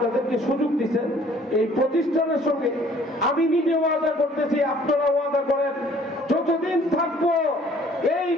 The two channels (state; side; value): normal; both; correlation 0.56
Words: সুযোগ দিচ্ছেন এই প্রতিষ্ঠানের সঙ্গে। আমি নিজে ওয়াদা করতেছি, আপনারা ওয়াদা করেন, যতদিন থাকবো এই